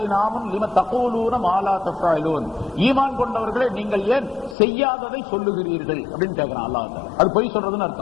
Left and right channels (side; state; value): right; drops out; at 4.5 s